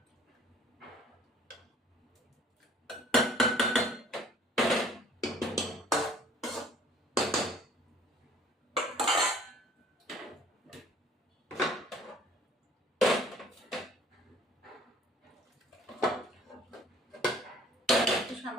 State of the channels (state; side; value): normal; both; correlation 0.54